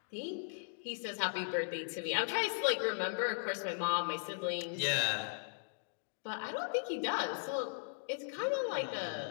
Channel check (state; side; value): silent; right; digital silence